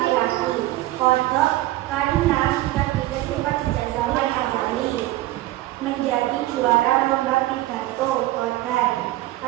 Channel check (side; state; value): left; quieter; 16.7 dB